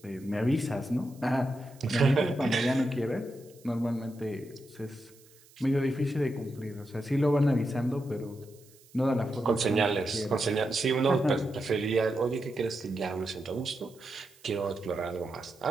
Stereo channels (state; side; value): noise; right; hiss, 27 dB below the sound